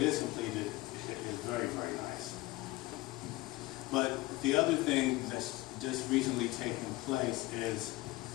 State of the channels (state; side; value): quieter; right; 19.9 dB